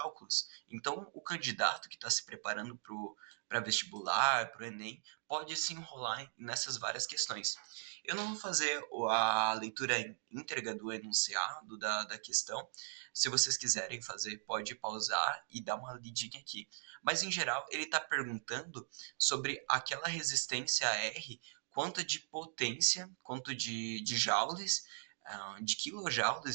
Então, o candidato que está se preparando para vestibular, para o Enem, pode se enrolar nessas várias questões. Eu não vou fazer a leitura íntegra do enunciado da questão. Se vocês quiserem fazer, pode pausar e dar uma lidinha aqui. Mas, em geral, ele está perguntando sobre aquela resistência R, quanto de potência, quanto de joules, de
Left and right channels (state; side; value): silent; left; digital silence